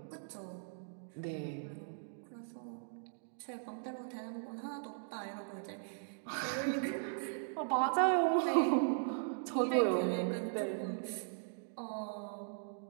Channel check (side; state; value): left; silent; digital silence